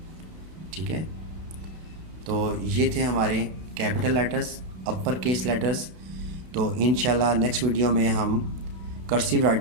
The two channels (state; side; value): late; left; 32 ms